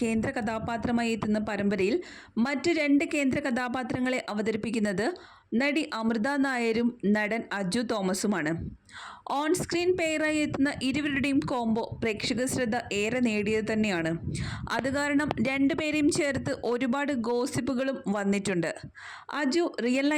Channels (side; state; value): both; identical; correlation 1.00